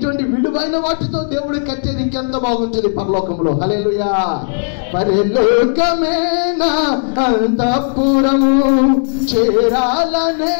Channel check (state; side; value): silent; right; digital silence